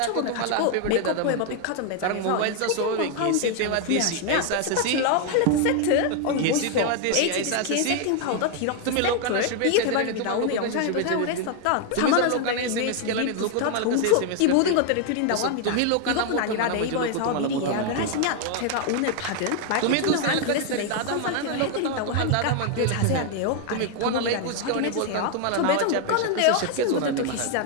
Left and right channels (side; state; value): both; different; correlation 0.01